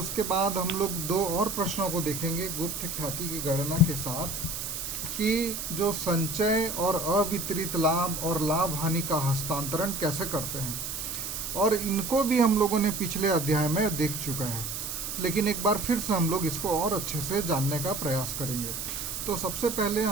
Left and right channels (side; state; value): right; noise; hiss, 5 dB below the sound